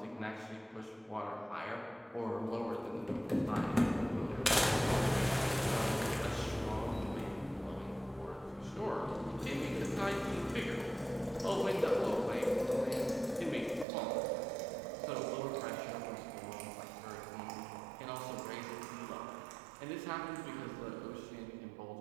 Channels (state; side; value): drops out; left; at 13.9 s